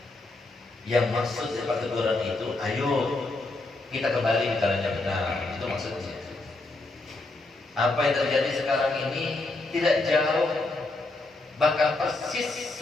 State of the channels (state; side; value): quieter; right; 3.1 dB